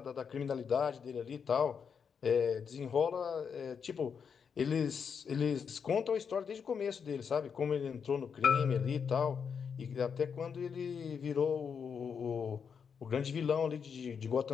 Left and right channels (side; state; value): right; quieter; 6.6 dB